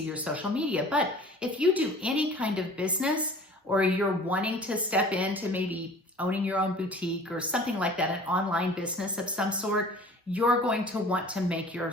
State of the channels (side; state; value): both; normal; correlation 0.45